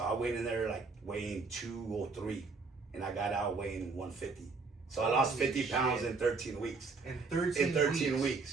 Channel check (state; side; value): quieter; left; 4.3 dB